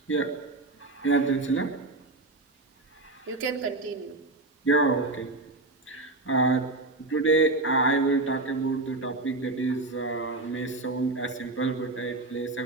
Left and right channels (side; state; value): left; quieter; 3.0 dB